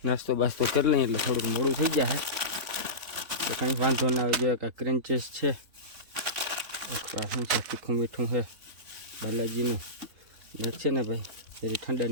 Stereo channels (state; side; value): late; left; 3.9 ms